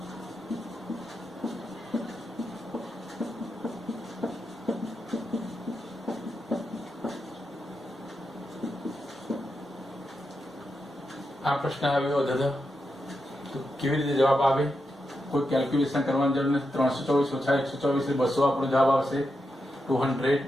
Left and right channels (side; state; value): both; normal; correlation 0.86